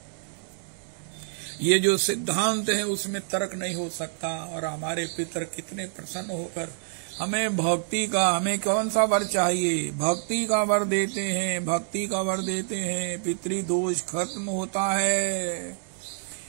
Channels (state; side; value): silent; left; digital silence